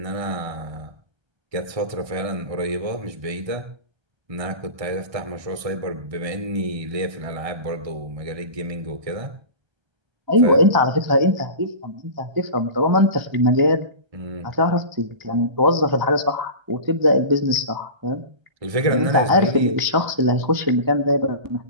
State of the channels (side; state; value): left; late; 1.3 ms